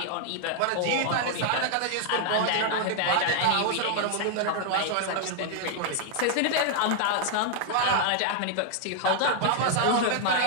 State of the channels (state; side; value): different; both; correlation 0.00